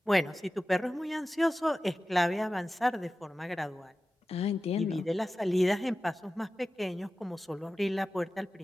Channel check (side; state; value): both; normal; correlation 0.95